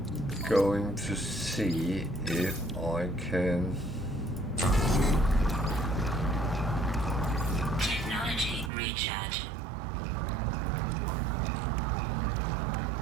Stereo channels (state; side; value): drops out; left; at 8.7 s